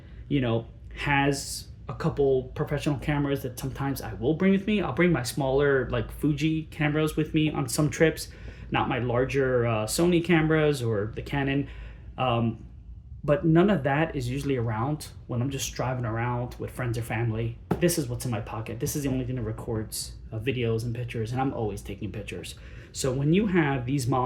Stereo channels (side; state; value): both; identical; correlation 1.00